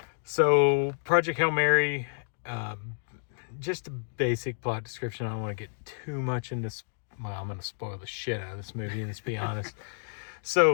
So, Project Hail Mary, just a basic plot description. I don't want to get too much into well, I'm going to spoil the shit out of this movie, let's be honest.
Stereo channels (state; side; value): silent; right; digital silence